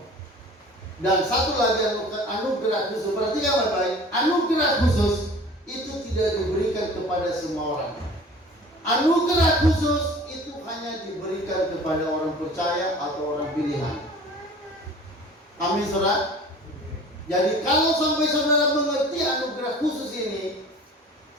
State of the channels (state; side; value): normal; both; correlation 0.45